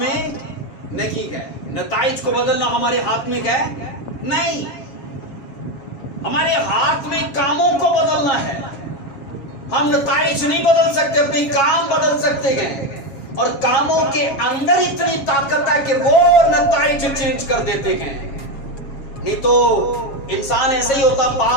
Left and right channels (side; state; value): right; late; 7.2 ms